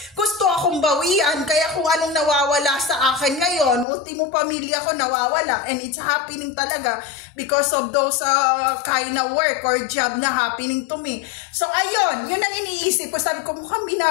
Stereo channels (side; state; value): right; drops out; at 3.9 s